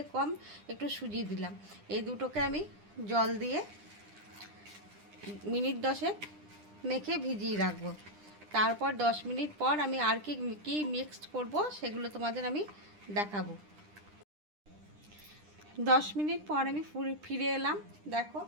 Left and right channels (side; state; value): left; late; 9.9 ms